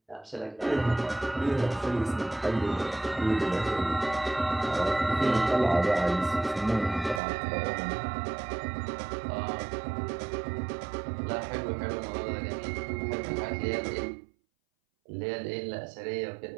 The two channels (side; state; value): left; drops out; at 7.2 s